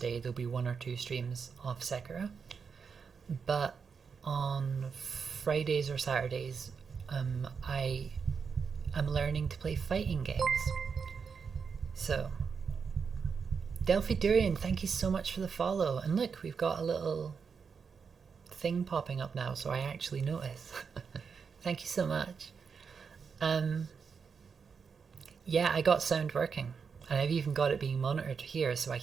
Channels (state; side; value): quieter; left; 5.9 dB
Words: there'll be 1 or 2 streams of Sekiro, but on Fridays or Saturdays I'm learning to play fighting games. So Delphi Durian, thank you so much for the follow. And look, we've got a little thing popping up now, so I actually notice. Thank you so much. Yeah, I got sound working, and I've even got it being monitored here, so I